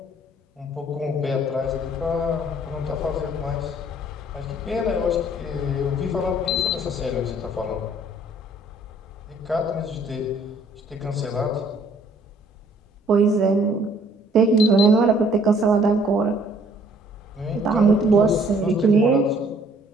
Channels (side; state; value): both; normal; correlation 0.60